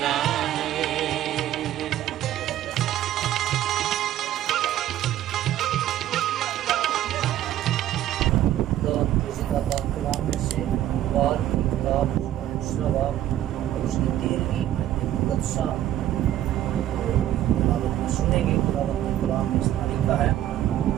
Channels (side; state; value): left; quieter; 12.6 dB